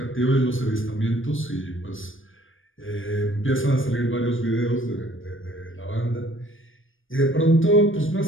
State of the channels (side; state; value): right; late; 0.58 ms